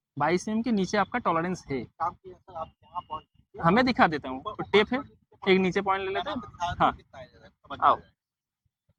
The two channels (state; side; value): identical; both; correlation 1.00